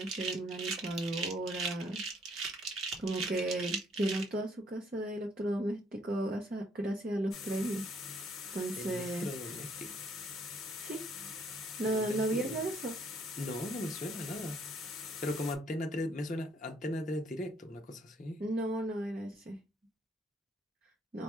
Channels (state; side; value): normal; both; correlation 0.66